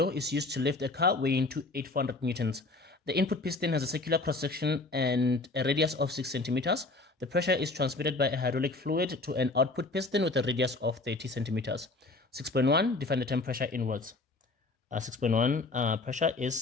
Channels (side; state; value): right; quieter; 3.2 dB